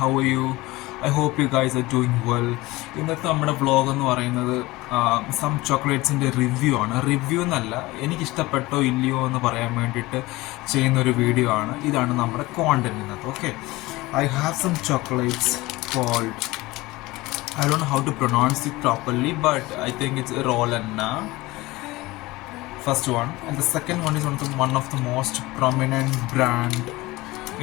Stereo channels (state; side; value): quieter; right; 20.3 dB